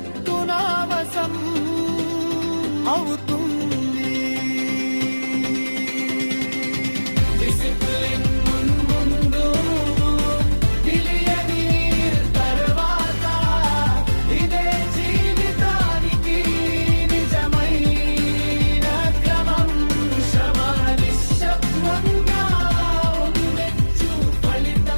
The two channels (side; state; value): both; inverted; correlation -1.00